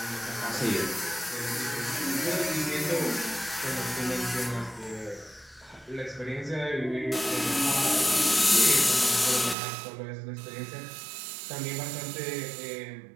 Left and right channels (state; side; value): drops out; left; at 9.6 s